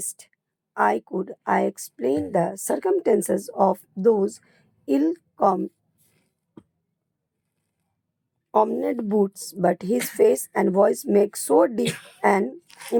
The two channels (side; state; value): both; identical; correlation 1.00